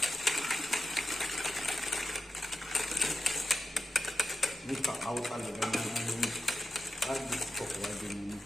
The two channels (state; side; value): normal; both; correlation 0.89